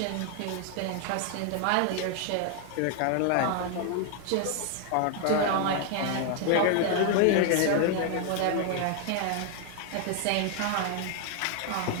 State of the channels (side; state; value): both; different; correlation 0.00